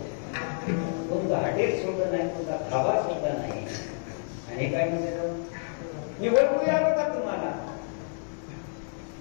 कोणतं हॉटेल सोडलं नाही, कोणता धाबा सोडला नाही. आणि काय म्हणते, मी ओळखू आलो का तुम्हाला?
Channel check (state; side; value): silent; right; digital silence